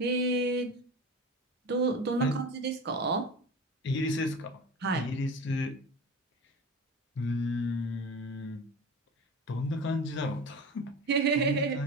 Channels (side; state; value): both; normal; correlation 0.31